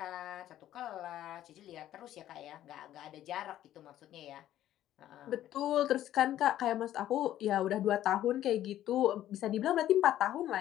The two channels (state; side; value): quieter; right; 12.6 dB